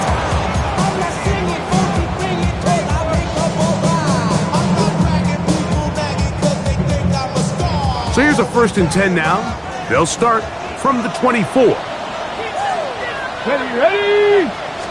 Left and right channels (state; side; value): identical; both; correlation 1.00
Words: So here's a 1st and 10 now. They'll start from the 24. Ready?